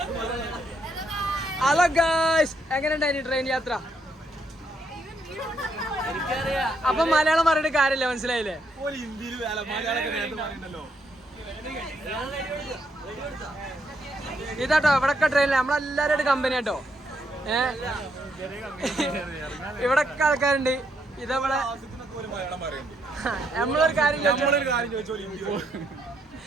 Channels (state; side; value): normal; both; correlation 0.75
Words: ഹലോ ഗായ്സ്, എങ്ങനെയുണ്ടായിരുന്നു ട്രെയിൻ യാത്ര? അപ്പൊ മലയാളം പറഞ്ഞിട്ട് കാര്യമില്ല, മനസ്സിലായില്ലേ? ഇതാട്ടോ ഇവിടൊക്കെ ട്രെയിനിൽ നമ്മളെല്ലാരും കമ്പനി ആട്ടോ. ഇവിടൊക്കെ ആൾക്കാരുണ്ട്. ഇതവിടെ നമ്മളൊരു കാര്യം